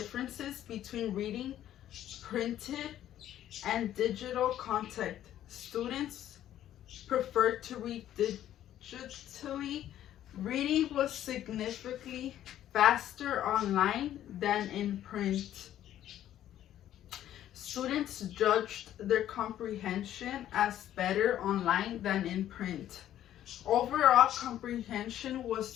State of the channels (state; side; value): quieter; right; 11.9 dB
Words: between reading printed and digital content. Students preferred to read digitally. Reading was significantly faster online than in print. Students judged their comprehension as better online than in print. Overall comprehension